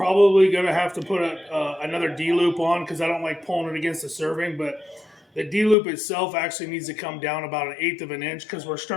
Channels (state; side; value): drops out; right; at 5.8 s